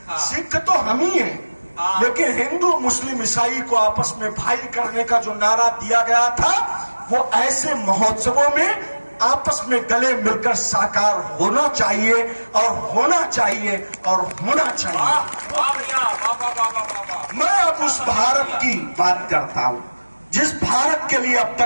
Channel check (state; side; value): inverted; both; correlation -1.00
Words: सिख तो हम ही हैं, लेकिन हिंदू मुस्लिम ईसाई को आपस में भाई करने का जो नारा दिया गया था, वो ऐसे महोत्सवों में आपस में गले मिलकर साकार होना चाहिए और होना चाहिए और होना चाहिए। मैं अब उस भारत की बात करता हूं जिस भारत के लिए अब